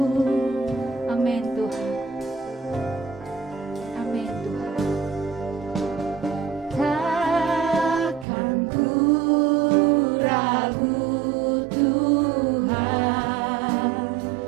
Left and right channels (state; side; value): drops out; left; at 8.2 s